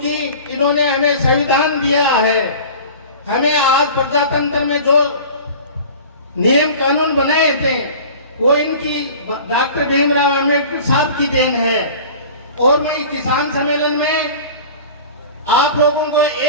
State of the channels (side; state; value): both; inverted; correlation -0.40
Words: इन्होंने हमें संविधान दिया है। हमें आज प्रजातंत्र में जो नियम कानून बनाए थे वो इनकी डॉक्टर भीमराव अम्बेडकर साहब की देन है। और मैं किसान सम्मेलन में आप लोगों को